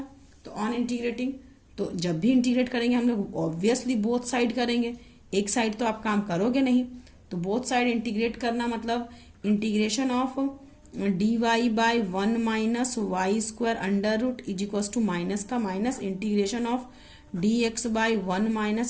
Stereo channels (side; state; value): both; identical; correlation 1.00